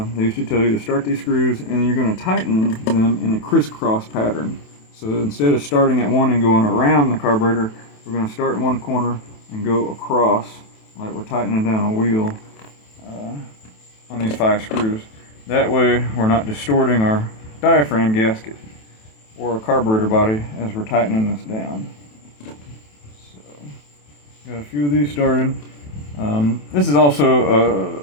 used to tell you to start these screws and then you're going to tighten them in a crisscross pattern. So instead of starting at one and going around the carburetor, we're going to start in one corner and go across like we're tightening down a wheel on these 5 screws. That way we're not distorting our diaphragm gasket or our carburetor body as we're tightening this down. So, got a few of these started. This is also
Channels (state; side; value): late; right; 27 ms